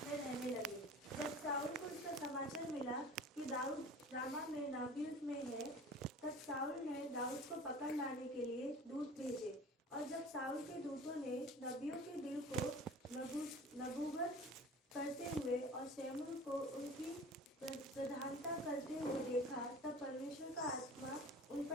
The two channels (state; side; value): normal; both; correlation 0.41